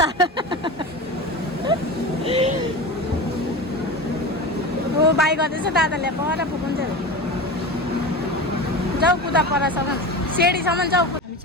ओ बाई गर्दैछ दादाले, पर पुग्छ। जाऊ कुदा परसम्म, सेडीसम्म जाऊ। हामी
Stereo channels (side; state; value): both; normal; correlation 0.28